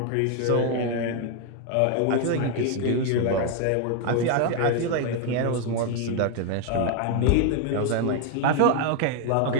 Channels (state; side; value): different; both; correlation 0.01